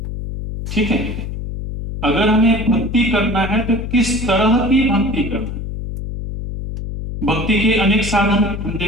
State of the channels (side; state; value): left; noise; hum, 6 dB below the sound